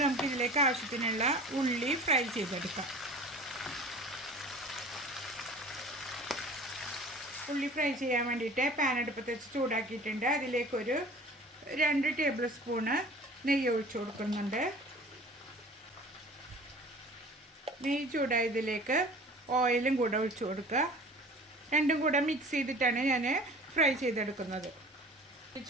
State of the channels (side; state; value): both; normal; correlation 0.43